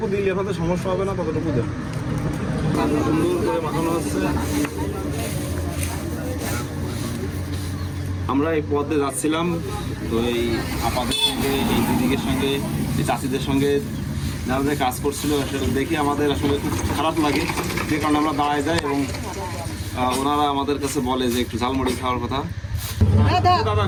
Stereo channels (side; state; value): both; identical; correlation 1.00